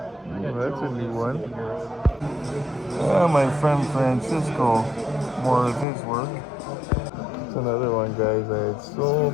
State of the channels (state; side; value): drops out; right; at 5.9 s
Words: Ooh, that's a new one. My friend Francisco, more of his work. It's another one, guys. I had so